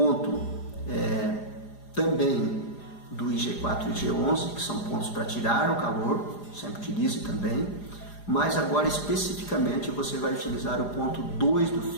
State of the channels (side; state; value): right; late; 4.9 ms